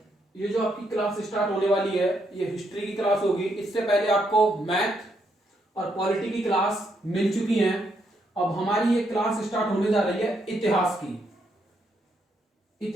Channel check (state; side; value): normal; both; correlation 0.76